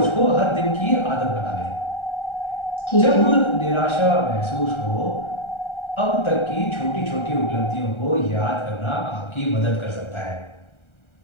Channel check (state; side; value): late; right; 1.3 ms